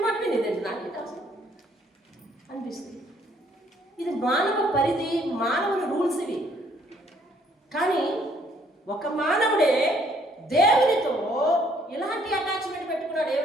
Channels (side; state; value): both; normal; correlation 0.65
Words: మాట వినేదండి, నాకేంటి అవసరం అనిపిస్తుంది. ఇది మానవ పరిధి, మానవుని రూల్స్ ఇవి. కానీ ఒక మానవుడే దేవునితో ఇలాంటి అటాచ్మెంట్ పెట్టుకున్నాడు.